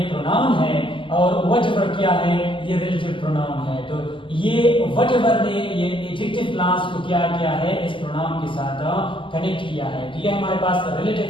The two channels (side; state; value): right; late; 0.25 ms